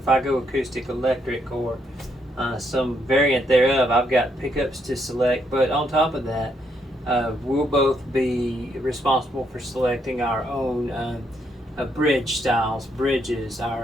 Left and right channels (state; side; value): normal; both; correlation 0.75